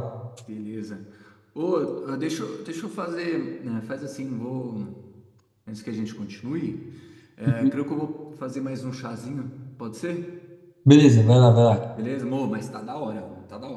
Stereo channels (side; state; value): both; identical; correlation 1.00